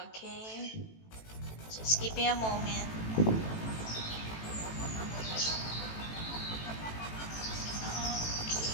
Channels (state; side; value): late; right; 18 ms